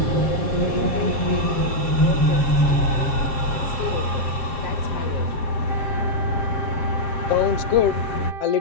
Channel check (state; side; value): late; right; 7.5 ms